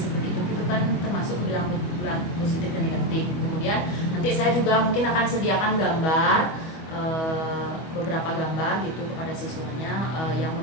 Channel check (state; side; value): late; right; 25 ms